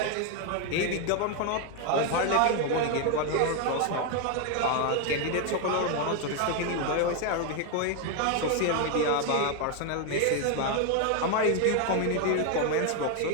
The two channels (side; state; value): both; different; correlation 0.01